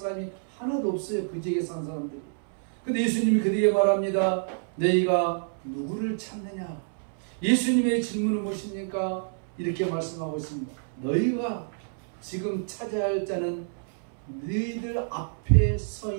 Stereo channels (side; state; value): left; silent; 59 dB below the other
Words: 하나도 없어요. 그 지역에 사는 사람들이. 근데 예수님이 그들에게 말합니다. 너희가 누구를 찾느냐? 예수님의 질문은 무엇입니까? 이렇게 말씀하고 있습니다. 너희가 지금 찾아야 할 자는 너희들 앞에 서